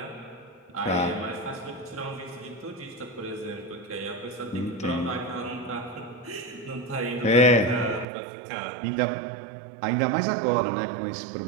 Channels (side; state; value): left; drops out; at 8.1 s